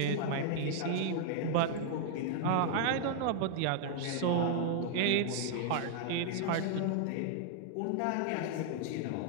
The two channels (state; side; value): different; both; correlation 0.00